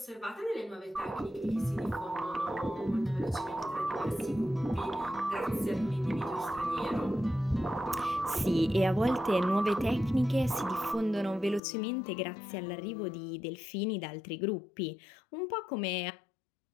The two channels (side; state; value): right; drops out; at 11.6 s